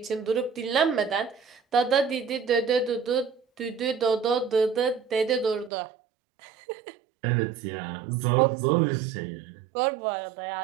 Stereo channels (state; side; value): drops out; left; at 5.7 s